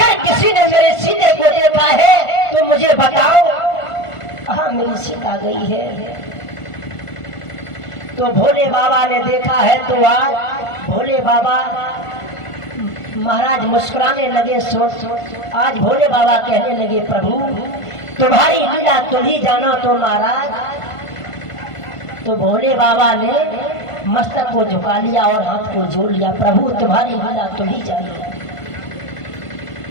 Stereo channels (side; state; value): right; late; 1.5 ms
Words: किसी ने मेरे सीते को देखा है तो मुझे बताओ। हाँ, मेरी सीता गई है। तो भोले बाबा ने देखा है तो आज भोले बाबा महाराज मुस्कुराने लगे। आज भोले बाबा कहने लगे, प्रभु तुम्हारी लीला तुम ही जानो तो महाराज। तो भोले बाबा ने मस्तक को झुका लिया और हाथ को जोड़ लिया, प्रभु तुम्हारी लीला तुम ही जानो।